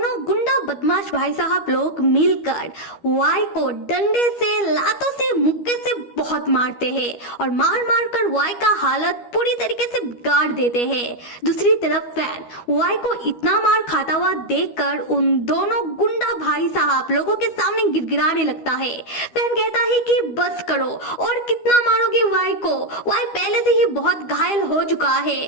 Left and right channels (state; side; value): late; right; 12 ms